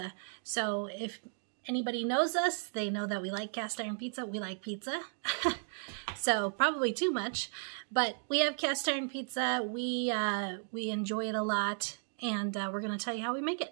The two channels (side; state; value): left; silent; 55 dB below the other